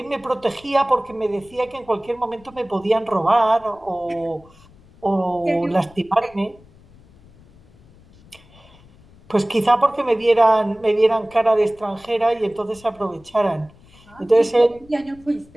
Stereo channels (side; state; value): left; noise; rumble, 26 dB below the sound